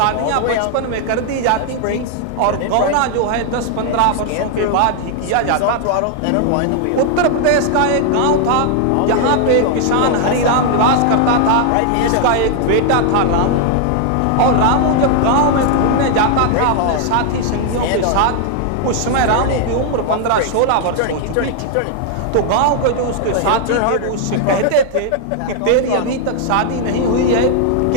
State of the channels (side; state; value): both; different; correlation 0.00